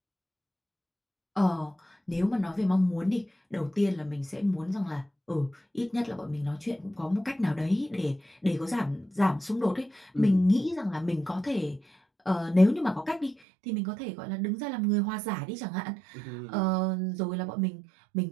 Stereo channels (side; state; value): left; drops out; at 13.4 s